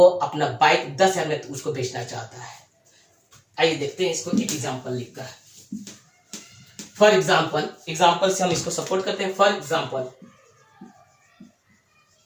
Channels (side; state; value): both; identical; correlation 1.00